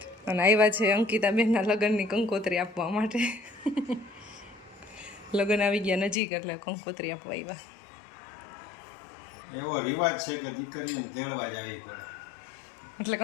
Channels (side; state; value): right; drops out; at 6.2 s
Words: અને આવ્યા છે અંકિતાબેનના લગ્નની કંકોત્રી આપવા માટે. લગ્ન આવી ગયા નજીક એટલે કંકોત્રી આપવા આવ્યા. એવો રિવાજ છે કે દીકરીઓને તેડવા જ આવી પડે એટલે